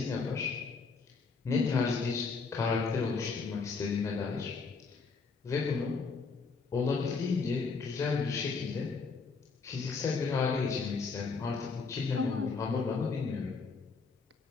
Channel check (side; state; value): right; quieter; 4.7 dB